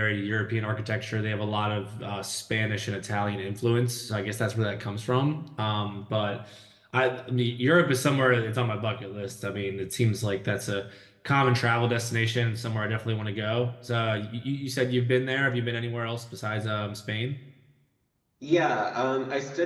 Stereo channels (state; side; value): identical; both; correlation 1.00